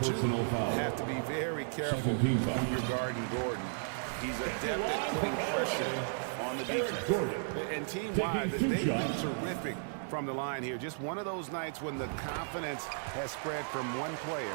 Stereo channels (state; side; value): silent; left; digital silence